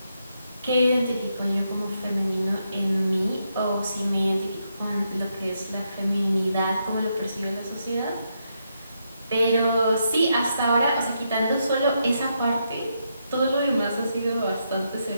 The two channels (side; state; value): both; inverted; correlation -0.81